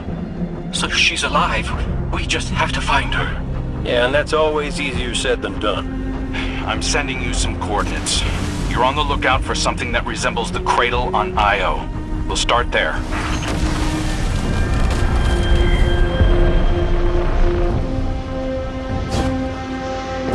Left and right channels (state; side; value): identical; both; correlation 1.00